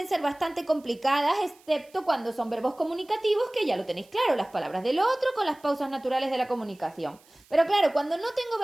ser bastante complicadas, excepto cuando son verbos comunicativos, que ya lo tenéis claro, las palabras del otro con las pausas naturales de la comunicación. Pero claro, cuando no tengo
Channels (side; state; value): right; noise; hiss, 29 dB below the sound